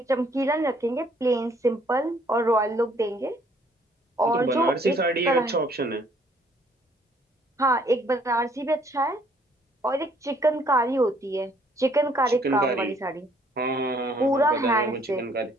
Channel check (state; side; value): normal; both; correlation 0.63